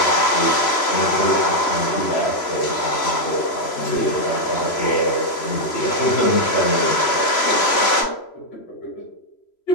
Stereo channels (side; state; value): right; late; 3.0 ms